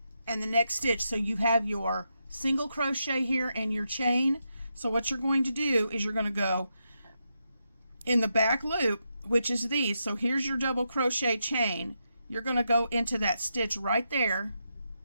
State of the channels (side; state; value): both; inverted; correlation -0.84